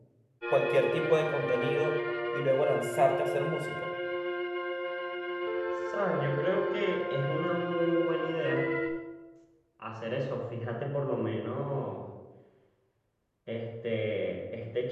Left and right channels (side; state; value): both; identical; correlation 1.00